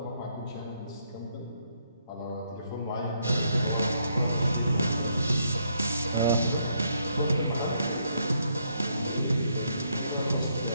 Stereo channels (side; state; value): both; inverted; correlation -0.75